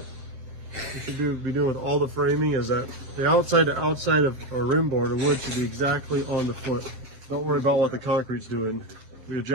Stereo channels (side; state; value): left; late; 7.7 ms